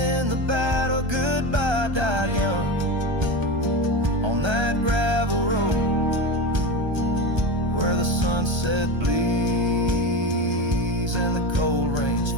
the battle. Goodbye died young on that gravel road where the sunset bleeds and the cold rains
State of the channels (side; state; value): left; late; 1.3 ms